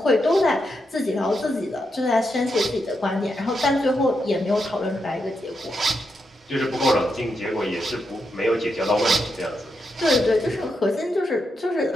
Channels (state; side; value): normal; both; correlation 0.83